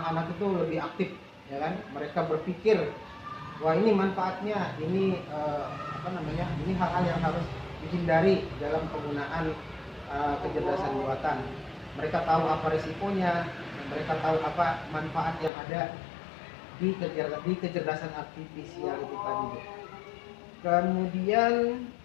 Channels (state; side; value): drops out; right; at 15.5 s